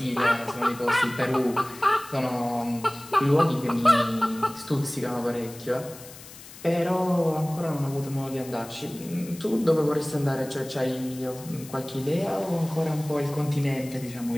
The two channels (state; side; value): noise; left; hiss, 17 dB below the sound